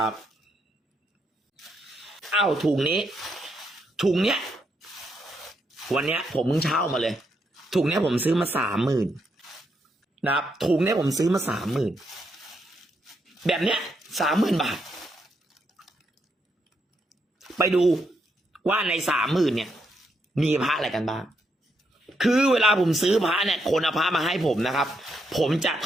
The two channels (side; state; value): both; normal; correlation 0.79